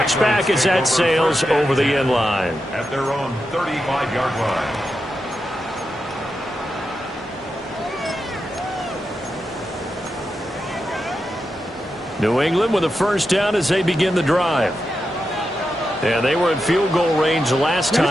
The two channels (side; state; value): both; normal; correlation 0.88